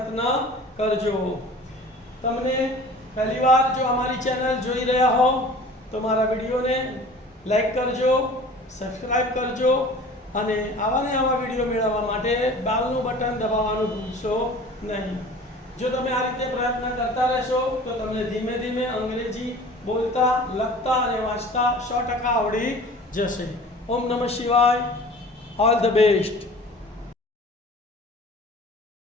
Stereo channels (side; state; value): both; normal; correlation 0.43